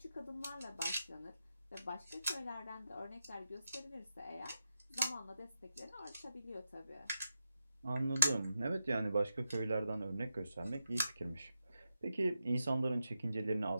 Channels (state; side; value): inverted; both; correlation -0.87